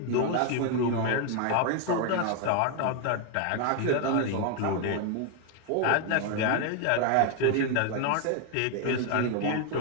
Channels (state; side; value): different; both; correlation 0.01